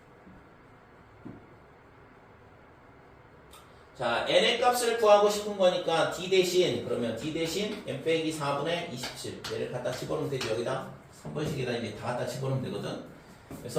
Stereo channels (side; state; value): both; identical; correlation 1.00